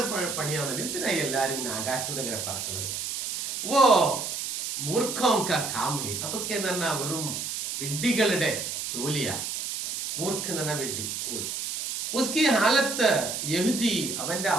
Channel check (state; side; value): noise; right; hiss, 4 dB below the sound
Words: പണിയാണല്ലോ. എന്തിനായി എല്ലാരും ഇങ്ങനെ ആകാശത്തൂടെ ഇങ്ങനെ പറക്കുന്നത്? ഓ മൂർഖോം കാ കാം ഹേ, അതൊക്കെ എന്ന് പറഞ്ഞാൽ വെറും വിഡ്ഢികളുടെ ജോലിയാ. മൂർഖ് എന്ന് പറഞ്ഞാൽ വിഡ്ഢി, ഫൂൾ. ഉസ്കി ഹാലത്ത് യഹ്ദി, അവന്റെ